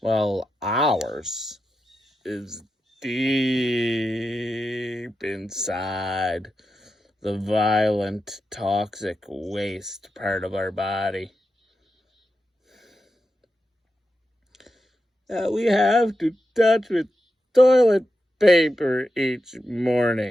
ours is deep inside the violent, toxic waste part of our body. That we have to touch with toilet paper each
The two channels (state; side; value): normal; both; correlation 0.89